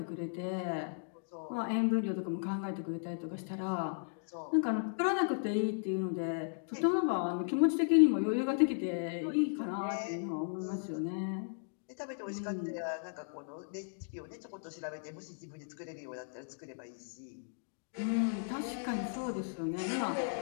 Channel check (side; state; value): right; silent; digital silence